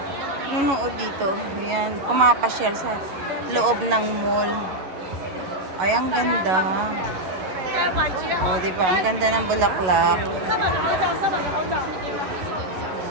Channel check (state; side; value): late; left; 11 ms